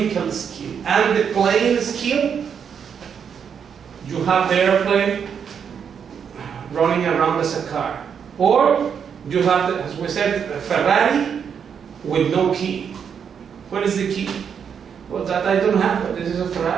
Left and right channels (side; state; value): left; quieter; 7.3 dB